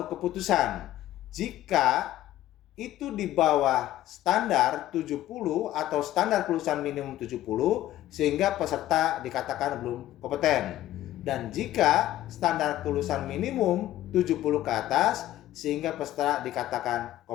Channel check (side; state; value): right; quieter; 14.0 dB